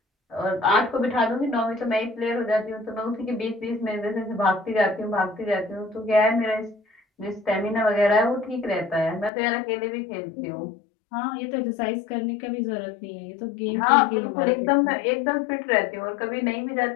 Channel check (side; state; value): right; drops out; at 9.3 s